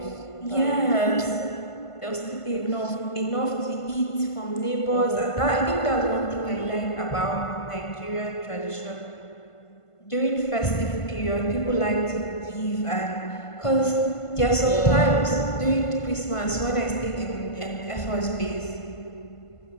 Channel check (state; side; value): late; right; 1.5 ms